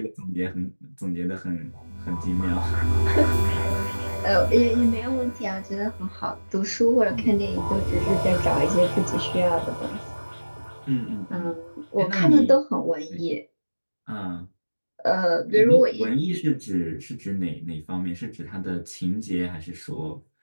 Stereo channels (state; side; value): inverted; both; correlation -1.00